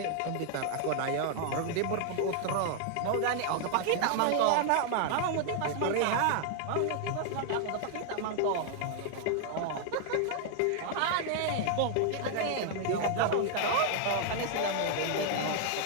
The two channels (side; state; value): both; different; correlation 0.00